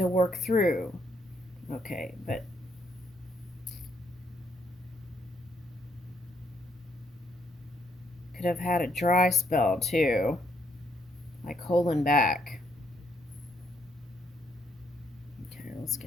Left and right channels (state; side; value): normal; both; correlation 0.72